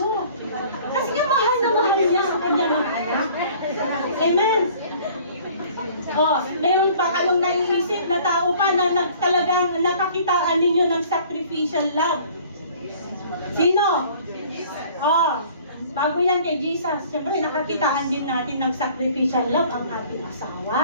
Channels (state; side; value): inverted; both; correlation -0.52